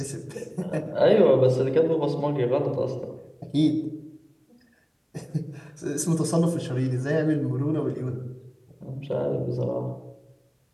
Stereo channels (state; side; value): identical; both; correlation 1.00